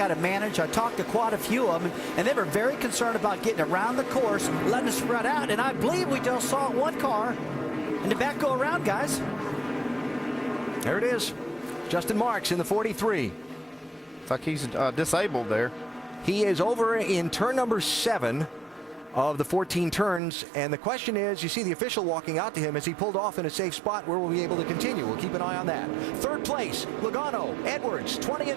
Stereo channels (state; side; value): drops out; left; at 20.2 s